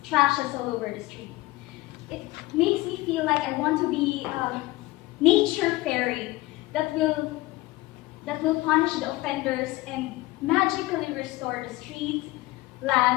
trashes all over the street. It makes me feel like I want to be a nature fairy that will punish the offenders and magically restore the streets,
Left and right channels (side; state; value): right; quieter; 19.8 dB